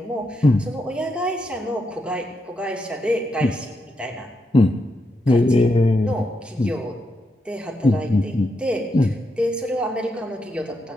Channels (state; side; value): normal; both; correlation 0.82